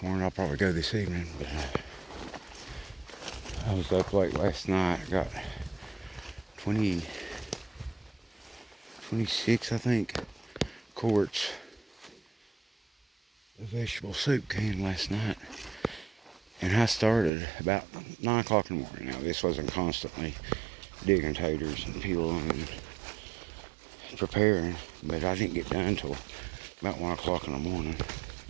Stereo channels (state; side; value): drops out; left; at 17.3 s